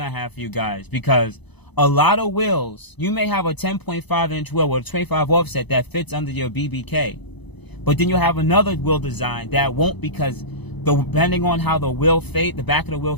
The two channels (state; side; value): late; right; 0.99 ms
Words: have for you guys, because a lot of wheels, you may have a 10.5 inch wheel with a 25 offset that fits under your BBK. But then you'll have another wheel design that won't, because depending on how the wheel face, the back of the wheel